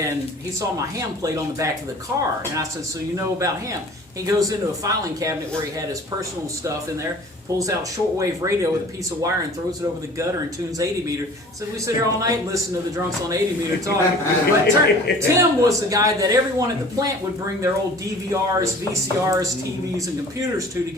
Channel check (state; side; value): normal; both; correlation 0.46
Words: he saw my ham plate on the back of the car, and I said, so you know about ham? He goes into a filing cabinet where he had his personal stuff in there, pulls out shortwave radio with a piece of wire and throws it over the gutter and tunes 80 meter. So we sit here all night and listen to the drunks on 80 meter talk. But Tim was the guy that everyone at the plant would bring their old DVRs, VCRs, TVs, and computers to